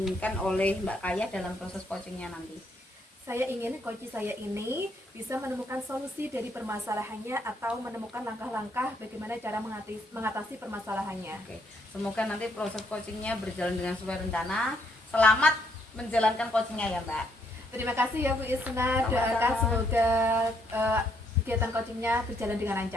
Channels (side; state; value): both; normal; correlation 0.72